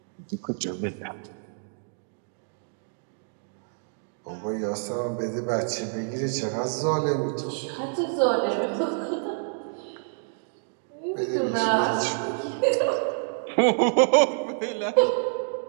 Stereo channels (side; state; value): left; silent; digital silence